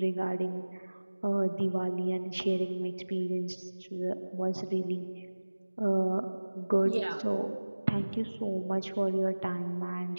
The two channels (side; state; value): both; inverted; correlation -1.00